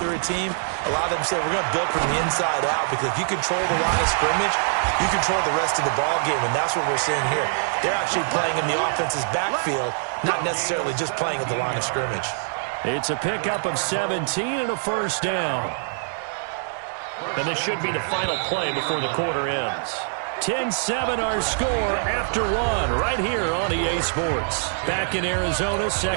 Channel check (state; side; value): silent; left; 61 dB below the other